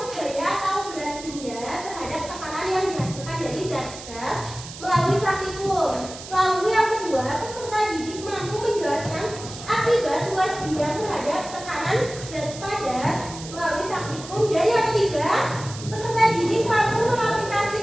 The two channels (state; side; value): noise; right; hiss, 13 dB below the sound